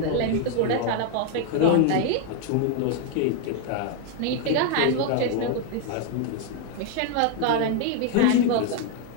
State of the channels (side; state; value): both; different; correlation 0.00